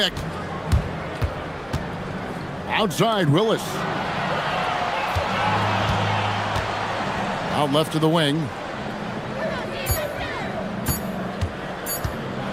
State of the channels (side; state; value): both; identical; correlation 1.00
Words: Outside, Willis. Out left to the wing.